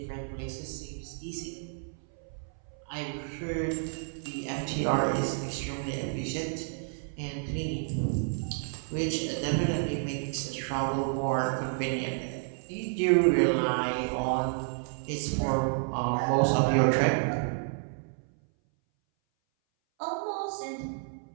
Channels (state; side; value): silent; left; 57 dB below the other